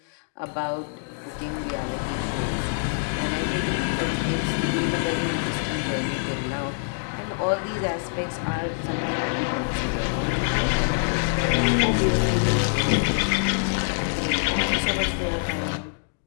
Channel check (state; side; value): silent; right; digital silence